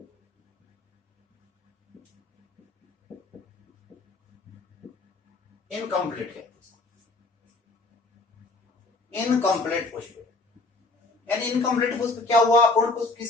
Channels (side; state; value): right; quieter; 3.3 dB